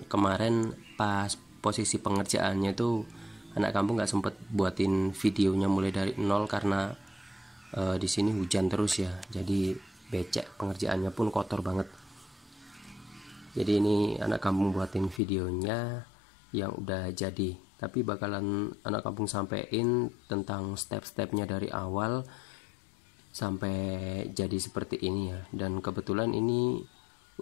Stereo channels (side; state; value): right; drops out; at 15.2 s